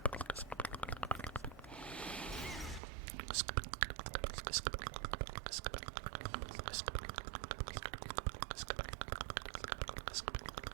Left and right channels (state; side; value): drops out; left; at 2.8 s